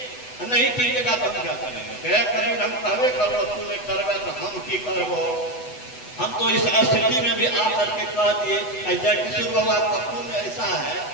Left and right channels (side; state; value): right; late; 8.1 ms